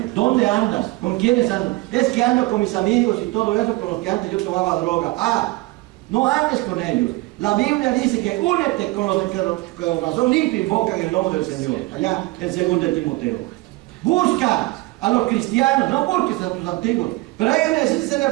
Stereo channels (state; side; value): quieter; left; 21.3 dB